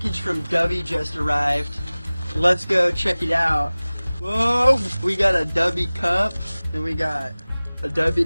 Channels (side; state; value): both; inverted; correlation -0.99